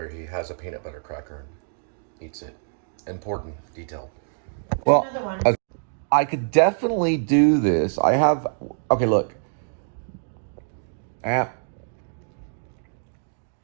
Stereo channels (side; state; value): left; silent; digital silence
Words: he has a peanut butter cracker and eats it. Important detail. Well, Another one. I could definitely do this. I have... Okay, look.